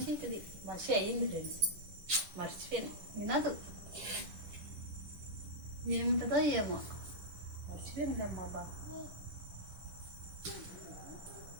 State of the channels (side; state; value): left; late; 10 ms